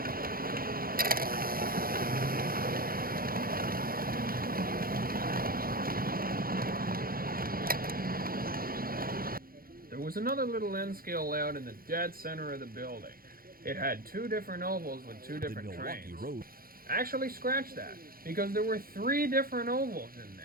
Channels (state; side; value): late; left; 0.42 ms